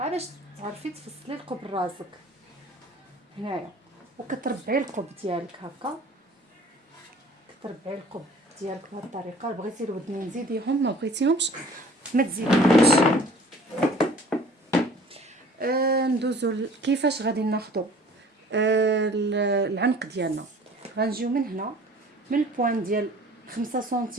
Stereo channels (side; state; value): both; normal; correlation 0.50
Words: تعرفي تفصلي القب راسك هنايا. وكتربعي القب ديالك هكا، كتربعي القب ديالك بهذه الطريقه. بغيتي الودنين زيديهم، ما بغيتيهمش ما تزيديهمش. ندوزو كيفاش غادي ناخذوا العنق ديالنا. غنجيو من هنا من البوان ديال 5